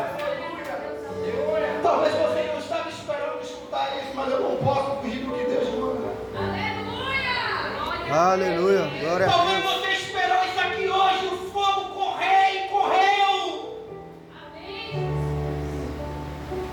Talvez você não estava esperando escutar isso, mas eu não posso fugir do que Deus manda. Aleluia. Glória a Talvez Deus. você esperou isso aqui hoje, o fogo correr e correu.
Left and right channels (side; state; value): both; identical; correlation 1.00